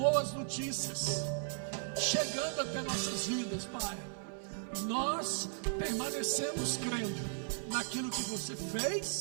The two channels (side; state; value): left; silent; 54 dB below the other